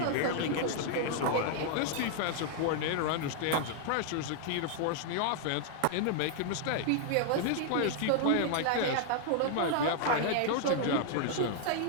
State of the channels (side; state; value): both; different; correlation 0.00